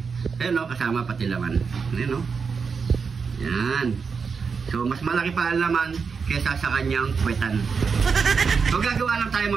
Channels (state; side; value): quieter; left; 5.5 dB